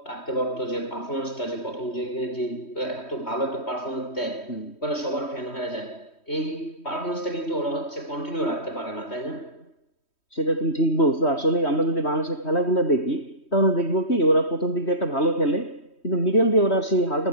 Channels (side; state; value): right; late; 3.1 ms